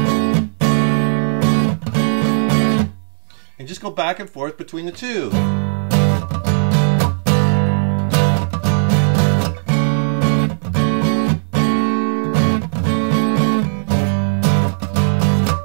and just go back and forth between the two.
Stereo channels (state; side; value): silent; left; digital silence